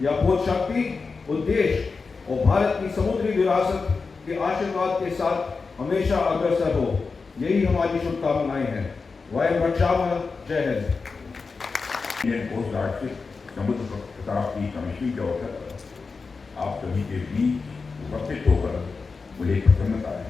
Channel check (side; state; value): right; quieter; 4.6 dB